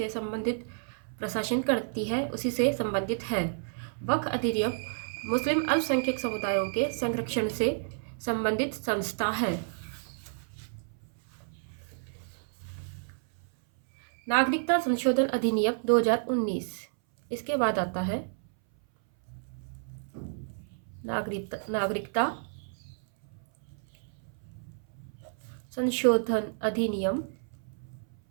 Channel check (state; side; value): silent; left; 58 dB below the other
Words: संबंधित प्रशासन करती है, उसी से संबंधित है। वक्फ अधिनियम मुस्लिम अल्पसंख्यक समुदायों के संरक्षण से संबंधित संस्था है। नागरिकता संशोधन अधिनियम 2019, इसके बाद आता है नागरिकता संशोधन अधिनियम